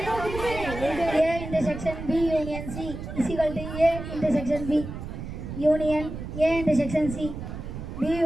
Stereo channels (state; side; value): noise; right; rumble, 8 dB below the sound